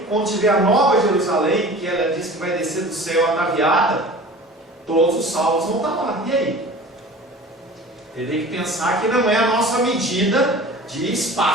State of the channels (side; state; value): both; normal; correlation 0.40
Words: quando tiver a Nova Jerusalém, que ela diz que vai descer do céu ataviada, todos os salvos vão estar lá. E aí? Ele tem que pensar que não é a nossa medida de